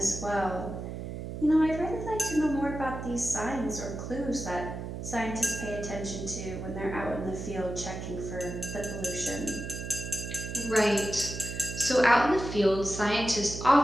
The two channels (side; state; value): right; noise; hum, 7 dB below the sound